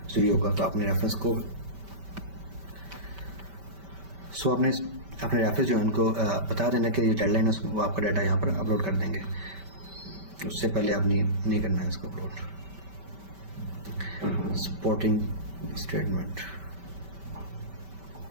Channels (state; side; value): late; left; 5.1 ms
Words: चाहिए होगा। तो आपने रेफरेंस को अपने रेफरेंस जो है उनको बता देना कि ये डेडलाइन है, वो आपका डाटा यहाँ पर अपलोड कर देंगे। उससे पहले आप नहीं करना है इसको अपलोड। Supporting statement.